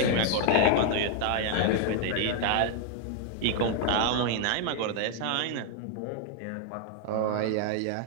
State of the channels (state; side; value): different; both; correlation 0.00